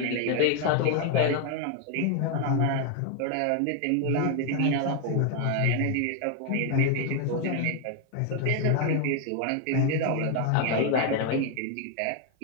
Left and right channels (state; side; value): different; both; correlation 0.00